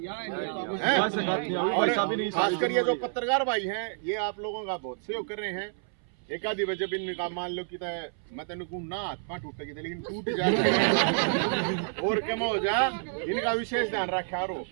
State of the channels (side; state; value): left; silent; 59 dB below the other